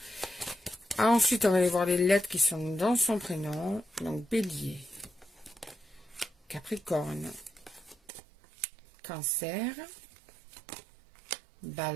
Ensuite, on va aller voir les lettres qui sont dans son prénom. Donc, Bélier, Capricorne, Cancer,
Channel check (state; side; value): drops out; left; at 8.0 s